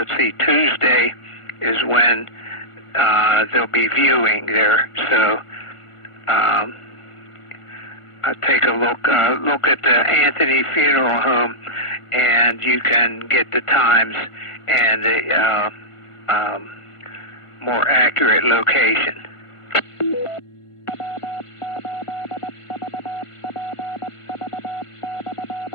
see, Tuesday is when they'll be viewing there. So take a look at the Anthony Funeral Home, and you can get the times and the more accurate location.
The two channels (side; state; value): right; late; 1.5 ms